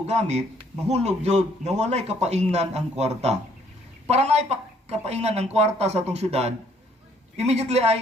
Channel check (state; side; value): normal; both; correlation 0.64